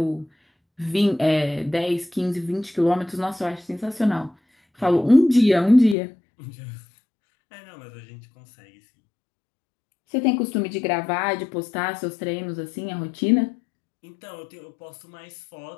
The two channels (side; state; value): right; drops out; at 6.0 s